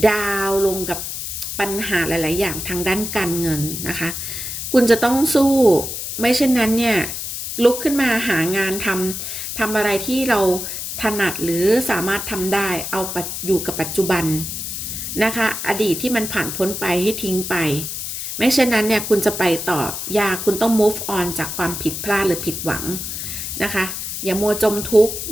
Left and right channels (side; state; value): left; noise; hiss, 5 dB below the sound